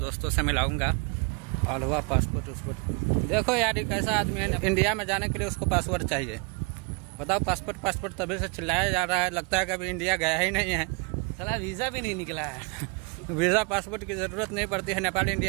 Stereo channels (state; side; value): quieter; left; 32.4 dB